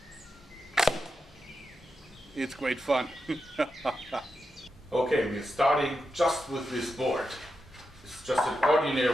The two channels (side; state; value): both; normal; correlation 0.88